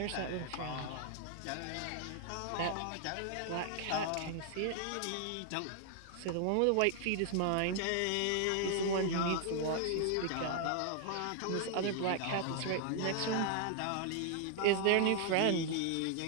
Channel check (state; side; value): different; both; correlation 0.00